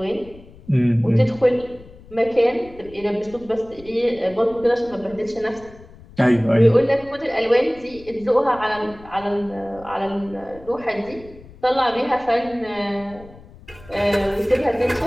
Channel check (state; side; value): noise; left; rumble, 21 dB below the sound